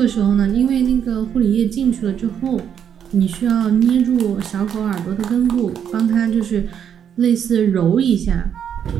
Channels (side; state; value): left; quieter; 8.5 dB